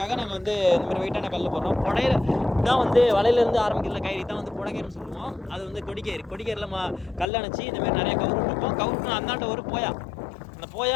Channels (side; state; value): right; drops out; at 7.3 s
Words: நாங்கள் வந்து இந்த மாதிரி வெயிட்டான கல் போடுறோம். புடையில தான் வந்து வலையிலேருந்து ஆரம்பிக்கிற கயிறு தான் வந்து புடகேர்னு சொல்லுவோம். அது வந்து கொடிக்கயிறில் கல் அணைச்சி இந்தமாதிரி நிறைய கவுரு இருக்கும். கவுருக்கு அந்தாண்ட ஒரு போயா, அந்த போயா